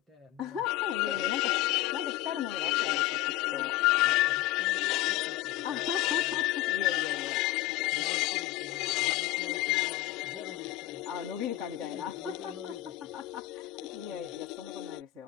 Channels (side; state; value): right; quieter; 15.3 dB